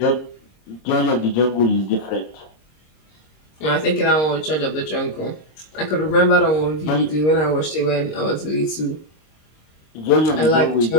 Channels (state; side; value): late; right; 26 ms